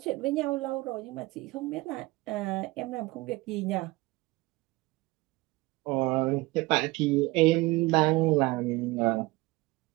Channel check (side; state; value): left; quieter; 21.6 dB